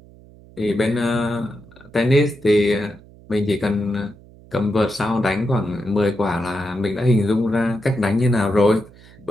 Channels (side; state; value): right; noise; hum, 23 dB below the sound